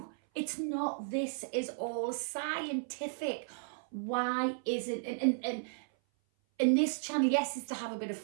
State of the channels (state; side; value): silent; left; 55 dB below the other